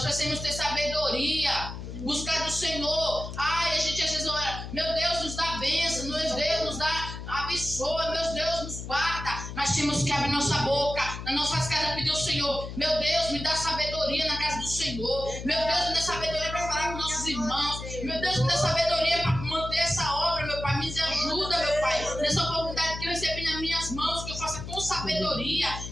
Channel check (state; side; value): noise; left; hum, 9 dB below the sound